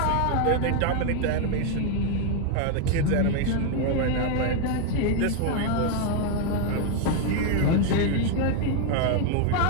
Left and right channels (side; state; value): both; different; correlation 0.01